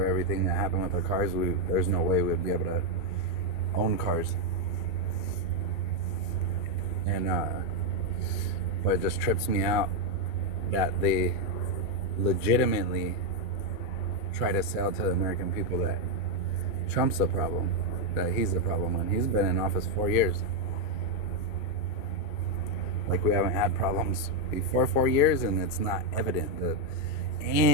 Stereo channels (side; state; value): right; late; 2.4 ms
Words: everything that happened with the cars, there's no way we'd be able to own cars. And but it just trips me out that they legitimately try to sell to the American people that Trump's the problem, that he's the problem, when he's been in office 4 years. Like, we haven't had problems before 4 years, and it's not evident that